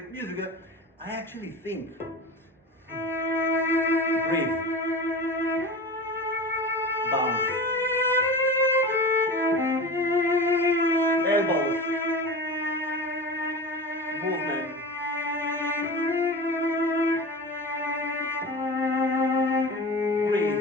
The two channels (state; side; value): normal; both; correlation 0.31